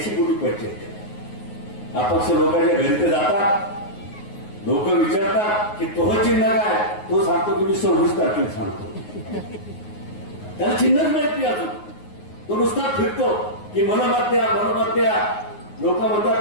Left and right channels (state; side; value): late; right; 9.5 ms